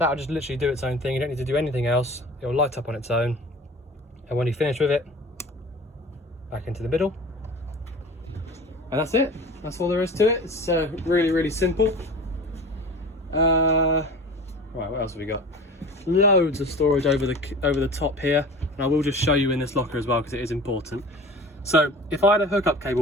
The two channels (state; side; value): normal; both; correlation 0.38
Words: just literally do its own thing. You don't need to do anything else. It will light up on its own. And when you finish with it, back into the middle. And that's it. That's all there is to it. It's really, really simple. Right, what else have we got? Loads of storage over the top here. And I will just show you in this locker as well, because it is important. So if I had a hookup